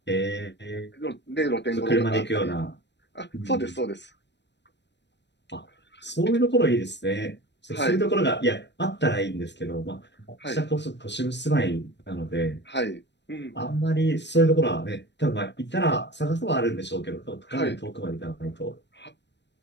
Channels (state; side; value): late; right; 0.51 ms